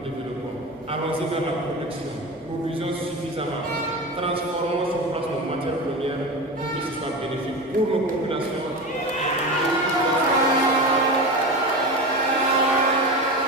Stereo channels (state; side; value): noise; left; hum, 29 dB below the sound